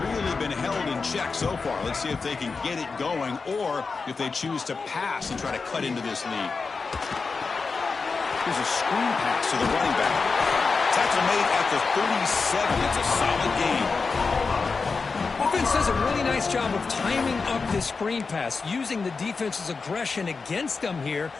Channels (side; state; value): right; quieter; 4.6 dB